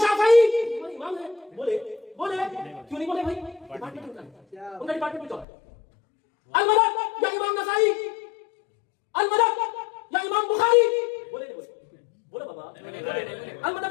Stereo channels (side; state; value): right; drops out; at 5.5 s